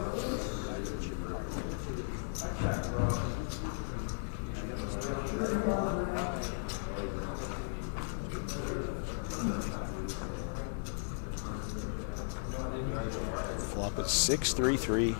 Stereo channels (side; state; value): right; silent; digital silence